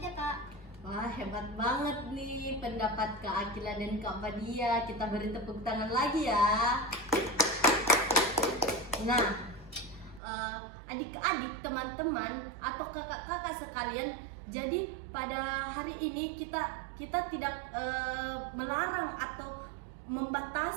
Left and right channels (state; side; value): drops out; left; at 10.2 s